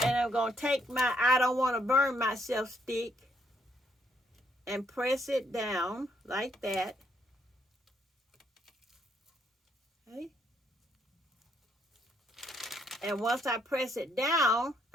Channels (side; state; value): both; normal; correlation 0.72